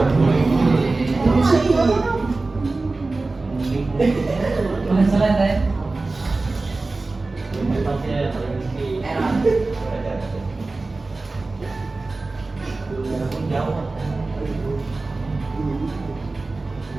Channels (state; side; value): quieter; left; 3.4 dB